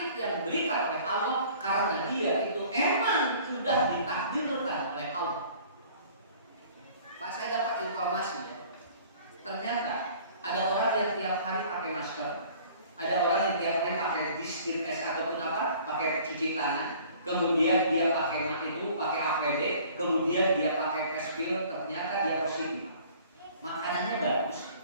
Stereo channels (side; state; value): both; inverted; correlation -0.51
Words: yang diberikan oleh Allah karena dia itu emang sudah ditakdirkan oleh Allah. Pak, saya dapat informasi ya. Ternyata ada orang yang tiap hari pakai masker, ada orang yang tiap hari pakai disinfektan ataupun pakai cuci tangan, kemudian dia pakai APD, kemudian dia pakai face shield, ternyata dia positif. Makanannya bagus,